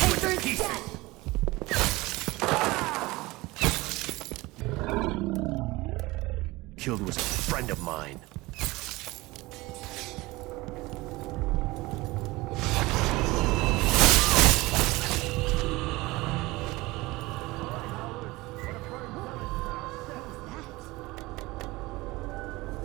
you into pieces. Killed was a friend of mine.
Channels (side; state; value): left; quieter; 21.1 dB